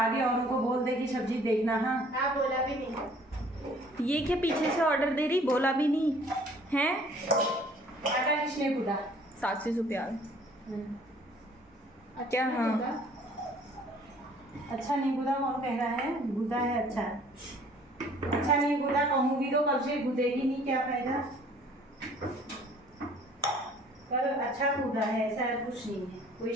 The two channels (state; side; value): normal; both; correlation 0.55